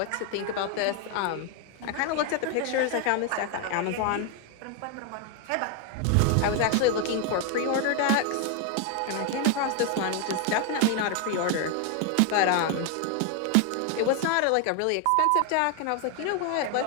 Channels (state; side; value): different; both; correlation 0.01